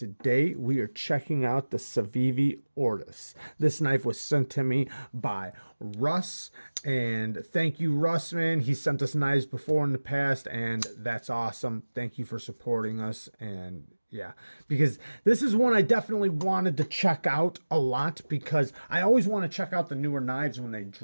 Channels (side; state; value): both; inverted; correlation -1.00